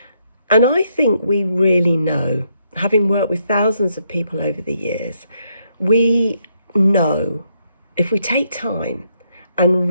And I think we really know, having worked with thousands of people over the years, we know if we take time and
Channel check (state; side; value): inverted; both; correlation -0.76